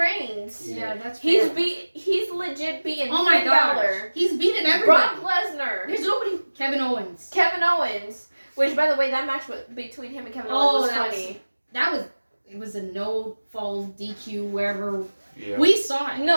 Yeah, that's He's fair. He's legit beating Oh my Finn gosh. Balor, He's beaten everybody. Brock Lesnar, There's nobody. Kevin Owens. Kevin Owens. Which, by the way, that match between him and Kevin Owens was that funny. that was it was a no fall DQ wherever Yeah. we saw it.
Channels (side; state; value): both; inverted; correlation -1.00